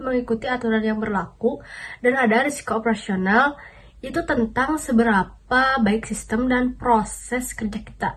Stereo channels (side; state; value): both; identical; correlation 1.00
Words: mengikuti aturan yang berlaku. Dan ada risiko operasional, itu tentang seberapa baik sistem dan proses kerja